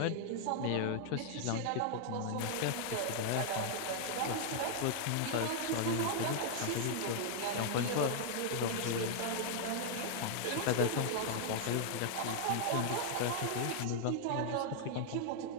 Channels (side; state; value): both; different; correlation 0.00